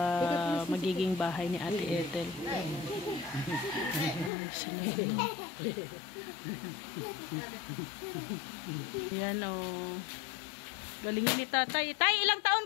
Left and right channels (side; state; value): right; drops out; at 4.3 s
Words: magiging bahay ni Ate Ethel. Yan galingin ni tatay. Tay, ilang taon